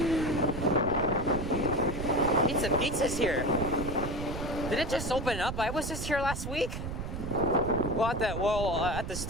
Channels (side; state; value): right; noise; rumble, 6 dB below the sound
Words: Pizza's here. Did it just open up? I was just here last week. Well, at the